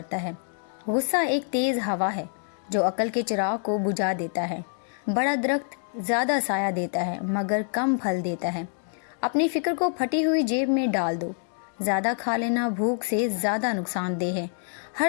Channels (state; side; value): silent; right; 61 dB below the other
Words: ہے۔ غصہ ایک تیز ہوا ہے جو عقل کے چراغ کو بجھا دیتا ہے۔ بڑا درخت زیادہ سایہ دیتا ہے مگر کم پھل دیتا ہے۔ اپنی فکر کو پھٹی ہوئی جیب میں ڈال دو۔ زیادہ کھا لینا بھوک سے زیادہ نقصان دہ ہے۔